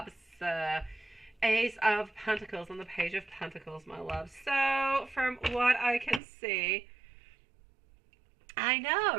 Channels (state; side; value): drops out; left; at 6.2 s